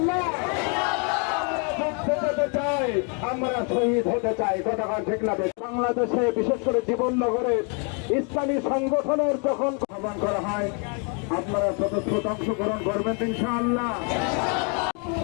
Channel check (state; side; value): quieter; right; 37.5 dB